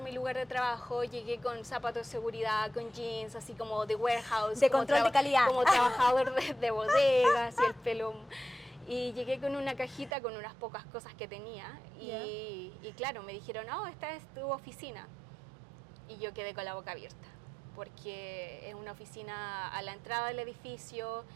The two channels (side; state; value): left; drops out; at 10.1 s